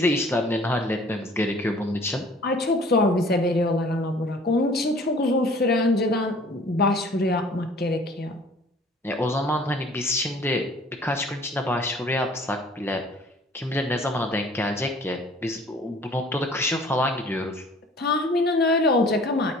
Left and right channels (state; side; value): normal; both; correlation 0.51